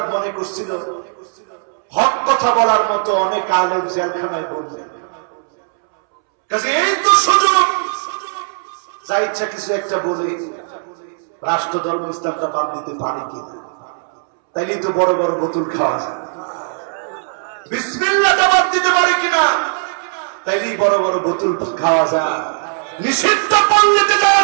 মনে করছিল হক কথা বলার মতো অনেক আলেম জেলখানায় বললেন, কাজে এই তো সুযোগ, যা ইচ্ছা কিছু একটা বলে রাষ্ট্র ধর্ম ইসলামটা বাদ দিতে পারে কিনা, তাইলেই তো বড় বড় বোতল খাওয়া যায়। বিসমিল্লাহটা বাদ দিতে পারে কিনা, তাইলেই বড় বড় বোতল খাওয়া যায়, নিষিদ্ধ পল্লীতে যাওয়া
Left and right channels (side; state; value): left; silent; 68 dB below the other